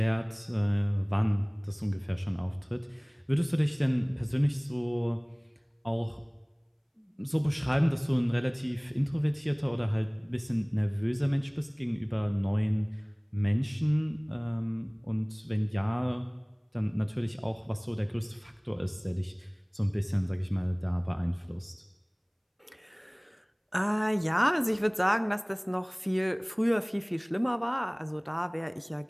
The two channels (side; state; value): both; identical; correlation 1.00